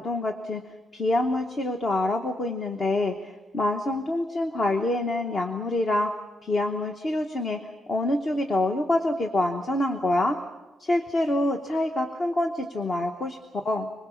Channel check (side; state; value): both; normal; correlation 0.81